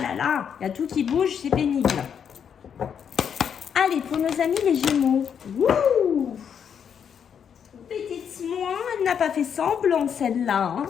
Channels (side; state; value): right; quieter; 7.7 dB